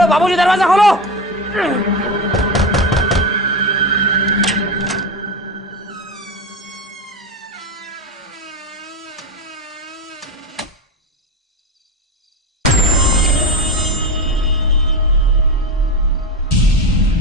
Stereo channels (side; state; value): both; normal; correlation 0.20